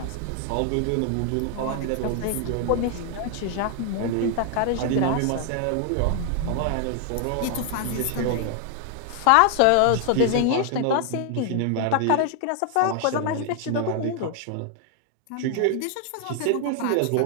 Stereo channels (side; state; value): both; different; correlation 0.00